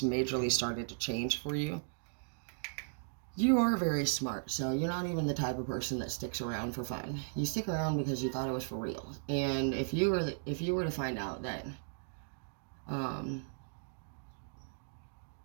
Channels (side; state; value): left; silent; digital silence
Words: majorly started to change for you. You are very smart, so you're not even the type of person that sticks around for fun. You stick around because you thought it was for real. And if you were to find out that,